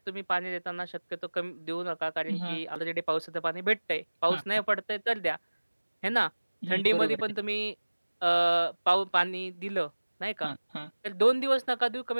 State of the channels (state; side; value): inverted; both; correlation -1.00